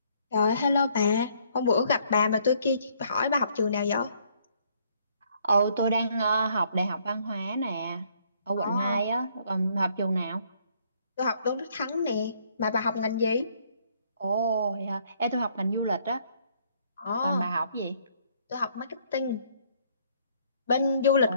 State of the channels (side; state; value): both; inverted; correlation -0.66